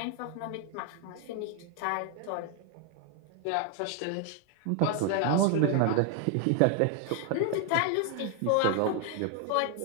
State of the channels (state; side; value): different; both; correlation 0.00